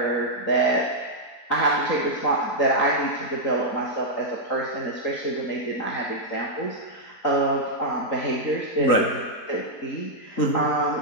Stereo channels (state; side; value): late; right; 3.9 ms